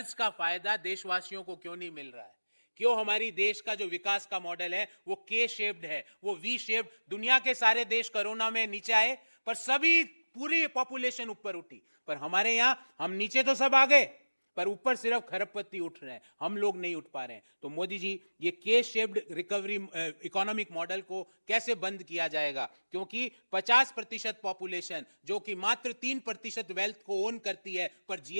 का फायदा देशवासियों को क्यों नहीं मिल रहा है? क्यों हमारी देश का जो विकास का मॉडल है वो के शेप्ड है, वो वी शेप्ड? दुनिया के सारे देश कोरोना में नीचे आए, पर सभी पूरी पॉपुलेशन ऊपर उठी। पर हमारे यहां हम नीचे तो सब आ गए, पर ऊपर सिर्फ खरबपति उठ रहे हैं, हम लोग नहीं उठ पा रहे हैं। तो मोदी जी, ये के शेप्ड रिकवरी इकोनॉमिक मॉडल को कैसे बंद किया जाएगा? क्योंकि 50% पॉपुलेशन जो कि मात्र 3% वेल्थ को ओन करती है, पर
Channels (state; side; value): inverted; both; correlation -1.00